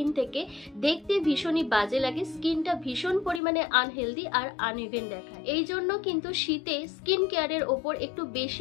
থেকে, দেখতে ভীষণই বাজে লাগে, স্কিনটা ভীষণ পরিমাণে আনহেলদি আর আনইভেন দেখায়। এই জন্য কিন্তু শীতে স্কিন কেয়ারের ওপর একটু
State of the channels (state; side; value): drops out; right; at 3.4 s